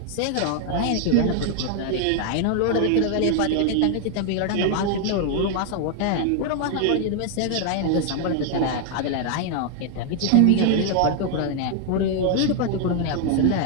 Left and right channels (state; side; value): different; both; correlation 0.00